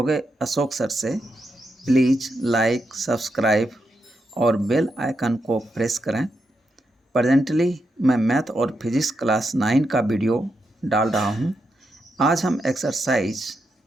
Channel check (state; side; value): normal; both; correlation 0.84